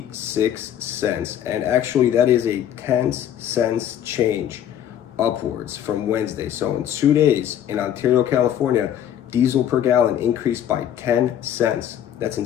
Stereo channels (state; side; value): quieter; right; 10.3 dB